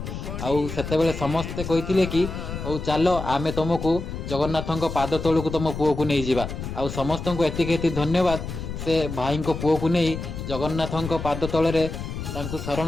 ଆଉ ସେତେବେଳେ ସମସ୍ତେ କହିଥିଲେ କି ହଉ ଚାଲ ଆମେ ତମକୁ ଜଗନ୍ନାଥଙ୍କ ପାଦ ତଳକୁ ତମ ପୁଅକୁ ନେଇଯିବା। ଆଉ ସମସ୍ତଙ୍କୁ ଏତିକି ଧନ୍ୟବାଦ, ସେ ଭାଇଙ୍କ ପୁଅକୁ ନେଇ ଜଗନ୍ନାଥଙ୍କ ପାଦ ତଳରେ ତାଙ୍କୁ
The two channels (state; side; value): noise; left; rumble, 7 dB below the sound